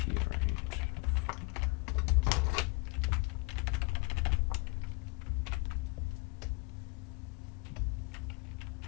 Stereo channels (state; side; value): quieter; right; 27.9 dB